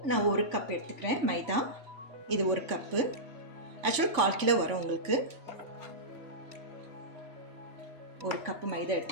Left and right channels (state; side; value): late; left; 3.5 ms